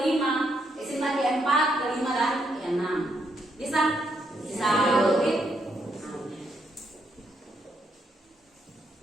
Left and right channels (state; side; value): normal; both; correlation 0.77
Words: sintaks keempat, kelima dan keenam. Bisa? Bisa.